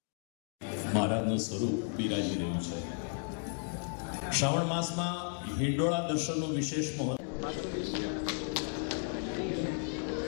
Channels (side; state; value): right; silent; 55 dB below the other